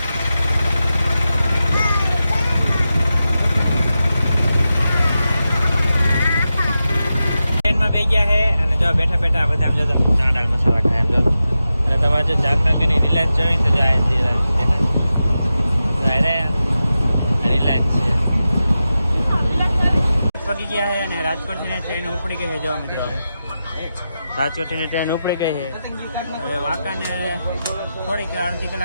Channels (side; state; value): both; inverted; correlation -0.91